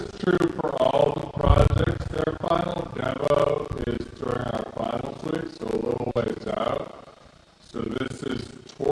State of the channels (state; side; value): identical; both; correlation 1.00